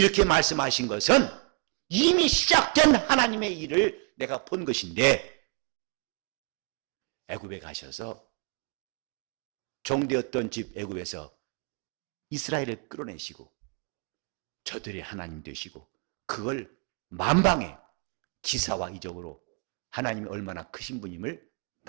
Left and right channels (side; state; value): left; quieter; 34.0 dB